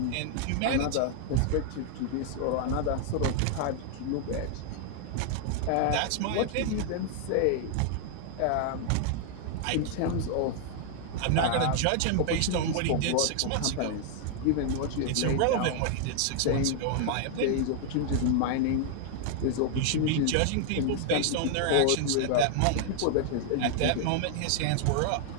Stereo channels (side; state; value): both; different; correlation 0.00